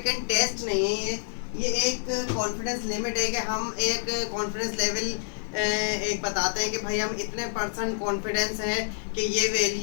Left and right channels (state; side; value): silent; right; digital silence